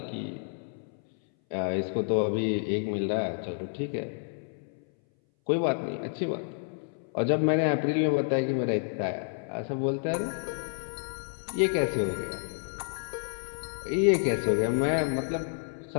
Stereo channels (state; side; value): silent; right; 58 dB below the other